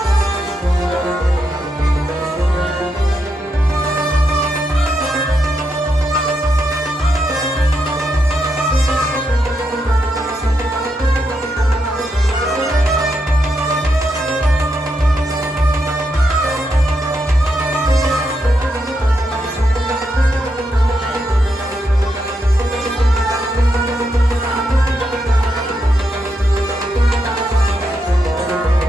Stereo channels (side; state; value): both; normal; correlation 0.82